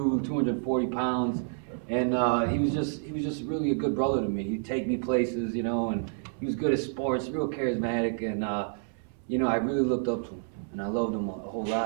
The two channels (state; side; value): silent; left; 59 dB below the other